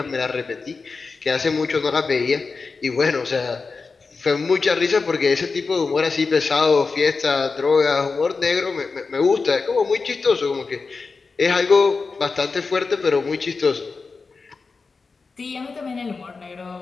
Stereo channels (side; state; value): right; quieter; 4.4 dB